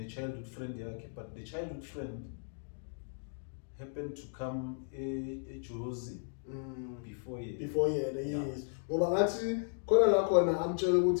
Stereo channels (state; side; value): silent; right; digital silence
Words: childhood friend yakhe, but the childhood friend happened to come a Jozi before ye. Yes. Ngoba ngathi khona la khona amtshela